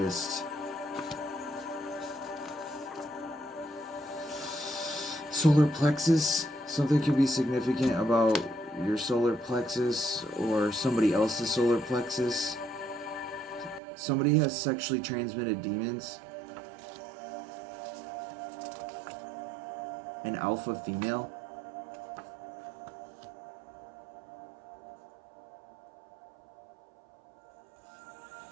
Solar plexus. Something could be significant about your solar plexus or somebody else's solar plexus. Somebody has sexually transmitted demons. An alpha female.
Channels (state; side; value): drops out; left; at 13.8 s